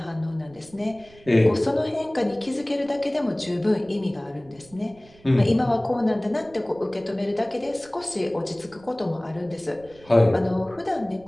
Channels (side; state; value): right; noise; rumble, 25 dB below the sound